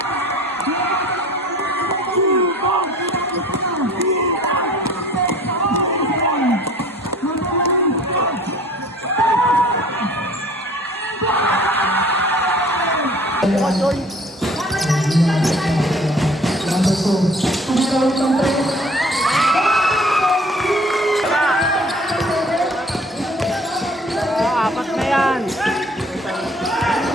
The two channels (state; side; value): normal; both; correlation 0.51